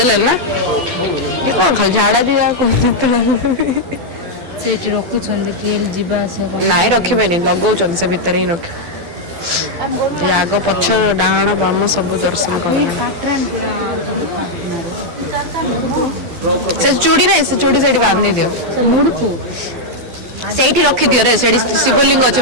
लेना ये कौन खाल झाड़ा दिया को सेठी रखु छंदे केल जीवा से नाइ रखिबे नहीं लगौ छन से भीतर ही रख आग पछ डाहाण बाम सब दर्शन कर से चूड़ी नहीं से चूड़ी सेठी बांधी दियो मुड़कू सेठी रखि दियो रे सेठी शिवलिंग अछि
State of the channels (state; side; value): late; left; 12 ms